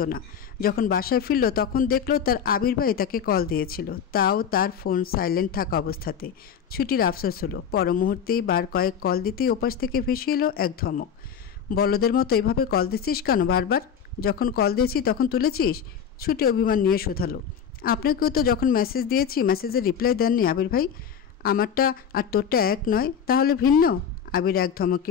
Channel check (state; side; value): quieter; right; 7.7 dB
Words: না। যখন বাসায় ফিরল তখন দেখলো তার আবির ভাই তাকে কল দিয়েছিল, তাও তার ফোন সাইলেন্ট থাকা অবস্থাতে। ছুটির আফসোস হলো। পর মুহূর্তেই বার কয়েক কল দিতেই ওপাশ থেকে ভেসে এলো এক ধমক। বলদের মতো এভাবে কল দিচ্ছিস কেন বারবার? যখন কল দিয়েছি তখন তুলেছিস? ছুটি অভিমান নিয়ে শোধালো। আপনাকেও তো যখন মেসেজ দিয়েছি মেসেজের রিপ্লাই দেননি আবির ভাই। আমারটা আর তোরটা এক নয়, তাহলে ভিন্ন? আবির এক